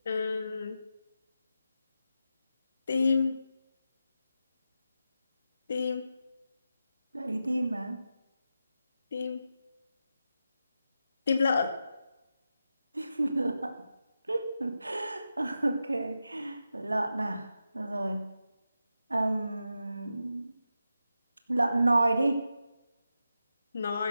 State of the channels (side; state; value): both; inverted; correlation -0.89